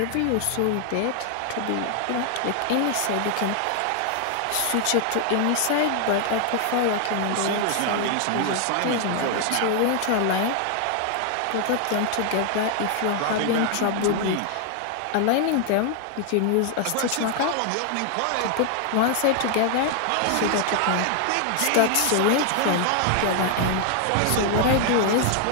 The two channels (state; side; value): different; both; correlation 0.00